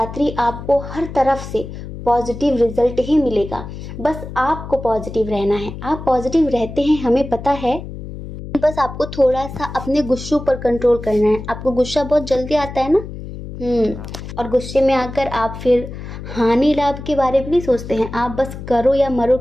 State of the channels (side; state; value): left; noise; hum, 10 dB below the sound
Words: आपको हर तरफ से पॉजिटिव रिजल्ट ही मिलेगा। बस आपको पॉजिटिव रहना है। आप पॉजिटिव रहते हैं, हमें पता है। बस आपको थोड़ा सा अपने गुस्सों पर कंट्रोल करना है। आपको गुस्सा बहुत जल्दी आता है ना, और गुस्से में आकर आप फिर हानि लाभ के बारे में नहीं सोचते हैं, आप बस करो या मरो